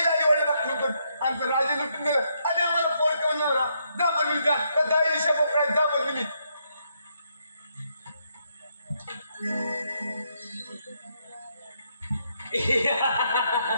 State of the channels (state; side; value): inverted; both; correlation -0.76